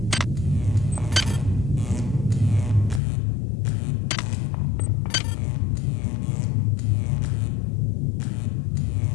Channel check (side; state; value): right; drops out; at 3.0 s